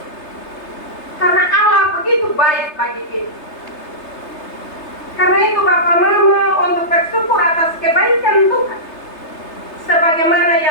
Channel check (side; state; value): right; late; 3.3 ms